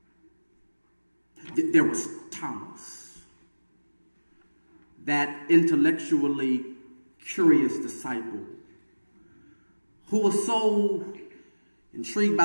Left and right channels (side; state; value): both; inverted; correlation -1.00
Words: There was Thomas, that intellectually curious disciple who was so intrigued by